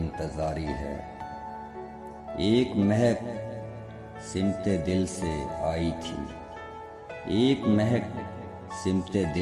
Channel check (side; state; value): both; identical; correlation 1.00